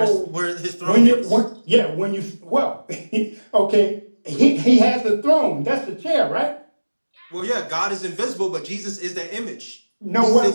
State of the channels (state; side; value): inverted; both; correlation -1.00